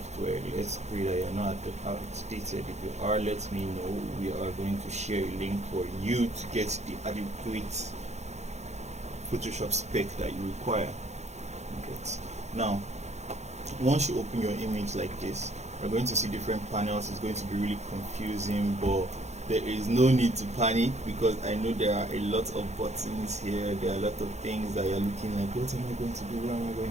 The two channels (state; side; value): late; left; 0.33 ms